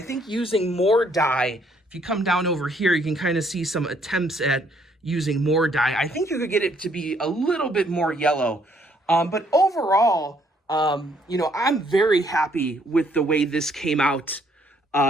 think using more dye, if you come down over here, you can kind of see some attempts at using more dye. I think you could get it to be a little bit more yellow. But overall, I'm very happy with the way this came out.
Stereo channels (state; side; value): normal; both; correlation 0.67